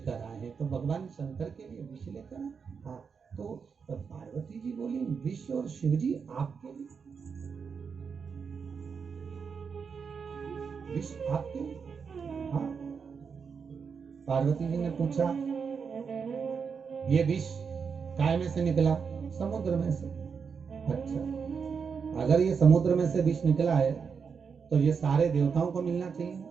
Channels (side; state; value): left; quieter; 6.0 dB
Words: आए हैं। तो भगवान शंकर के लिए विष लेकर आए। हाँ, तो पार्वती जी बोली विष और शिव जी आपके लिए, विष आपके लिए? हाँ। पार्वती जी ने पूछा ये विष काय में से निकला? समुद्र में से। अच्छा, अगर ये समुद्र में से विष निकला है तो ये सारे देवताओं को मिलना चाहिए,